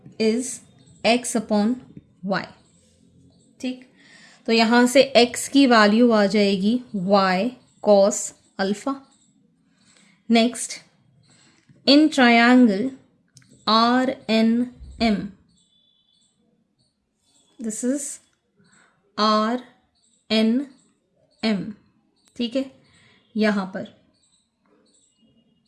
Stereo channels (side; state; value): both; identical; correlation 1.00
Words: is x upon y. ठीक, तो यहाँ से x की वैल्यू आ जाएगी y cos अल्फ़ा। Next, in triangle R N M, this is R N M, ठीक है, यहाँ पर.